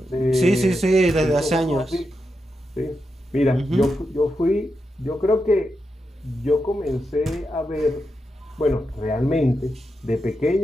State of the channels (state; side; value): normal; both; correlation 0.87